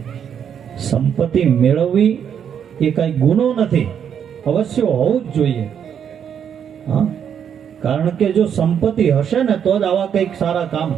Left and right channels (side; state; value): left; quieter; 8.3 dB